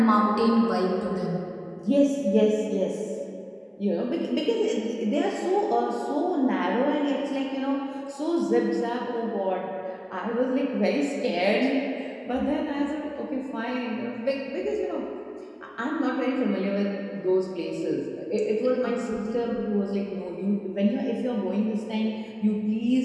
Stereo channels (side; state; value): both; identical; correlation 1.00